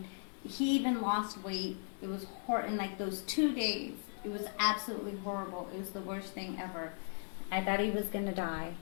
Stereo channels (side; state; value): right; silent; digital silence